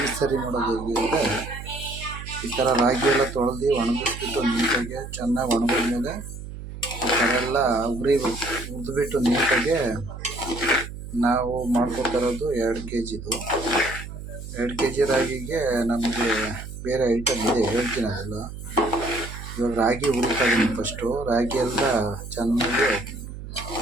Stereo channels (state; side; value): noise; right; hum, 11 dB below the sound